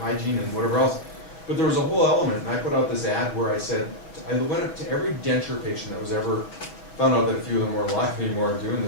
and whatever else. But there was a whole element, and I put out this ad where I said, I went up to every denture patient that was ever, found out that a few of them weren't alive anymore doing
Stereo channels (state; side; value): late; right; 6.1 ms